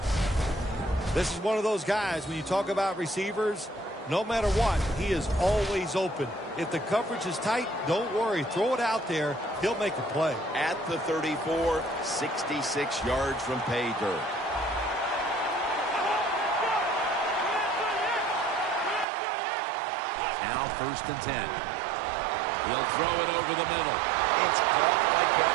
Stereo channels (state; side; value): drops out; left; at 19.1 s